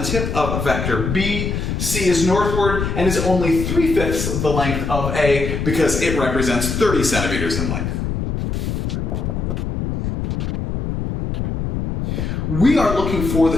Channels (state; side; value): noise; left; rumble, 3 dB below the sound